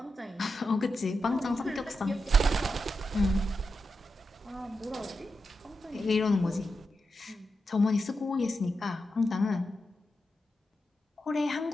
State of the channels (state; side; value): normal; both; correlation 0.87